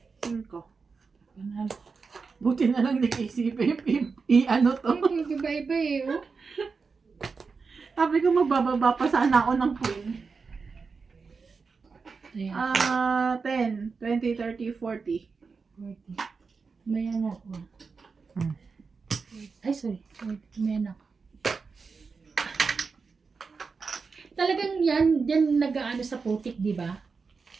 5. Panalo. Buti na lang naisipin i-ano to. Ay, iba-iba eh. Oh. Sabi ko magbababa pa sana ako ng queen. Ayan. 10, 20, 30, 40. 40. Mayan ako. Ay, sorry. 40. Mayan ako. Talagang yan nag-aano sa putik, di ba?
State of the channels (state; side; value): quieter; left; 4.9 dB